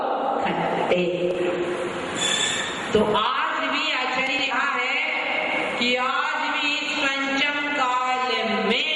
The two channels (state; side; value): identical; both; correlation 1.00